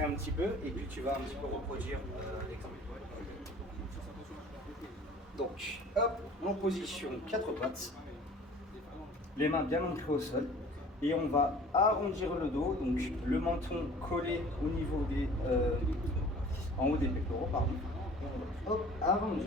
un petit peu et puis tu vas un petit peu reproduire l'exemple. Donc, hop, en position 4 pattes, les mains bien ancrées au sol, et on va arrondir le dos, donc le menton collé au niveau des, en haut des pectoraux, pardon. Et on va, hop,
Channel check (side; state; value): both; normal; correlation 0.47